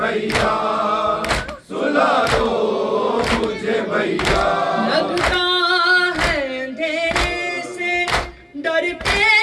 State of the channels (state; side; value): identical; both; correlation 1.00